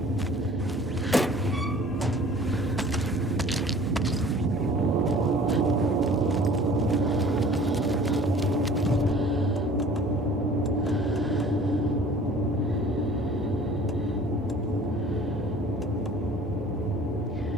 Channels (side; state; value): both; normal; correlation 0.48